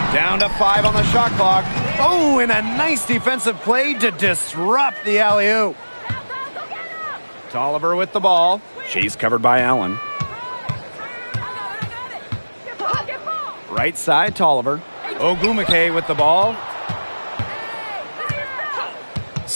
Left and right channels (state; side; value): inverted; both; correlation -1.00